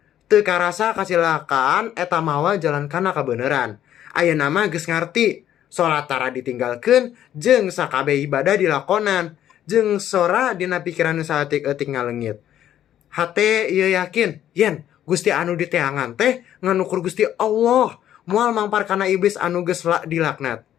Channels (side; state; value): right; quieter; 11.2 dB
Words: Teu karasa kacilakaan eta mawa jalan kana kabeneran. Ayeuna mah geus ngarti. Salat tara ditinggalkeun jeung sakabeh ibadah dilakonan. Jeung sora dina pikiran nu saeutik-eutik ngaleungit. Hate ieu yakin, yen Gusti anu diteangan teh nganukur Gusti Allah. Moal mampar kana iblis anu geus dilaknat.